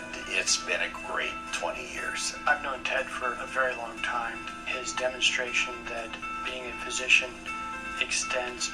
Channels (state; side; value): identical; both; correlation 1.00